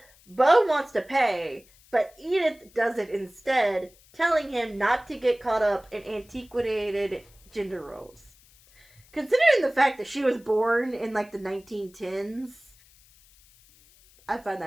Bo wants to pay, but Edith does it instead, telling him not to get caught up in antiquated gender roles. Considering the fact that she was born in like the 1910s, I find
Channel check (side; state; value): left; noise; hiss, 28 dB below the sound